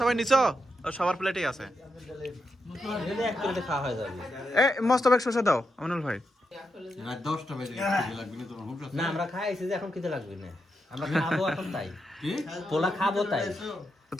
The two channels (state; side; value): normal; both; correlation 0.84